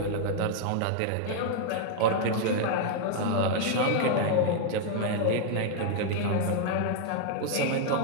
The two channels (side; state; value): both; different; correlation 0.00